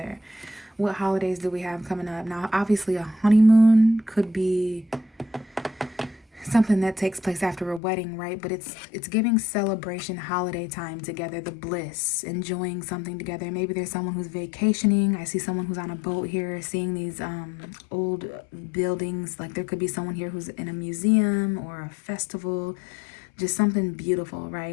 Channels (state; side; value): drops out; right; at 7.8 s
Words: What holidays do we have coming up? Now, obviously, a honeymoon could be something that takes place after a wedding, right? But it's giving celebration, holiday time together, the bliss, enjoying something together. Maybe there's someone who's vacationing. I see someone who's on a boat here, seeing these old buildings. Like there could be someone here who's in a museum or a festival, just something beautiful,